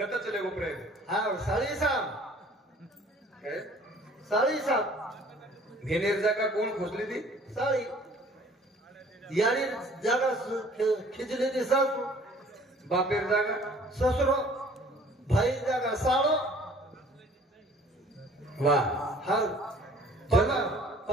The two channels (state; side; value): normal; both; correlation 0.53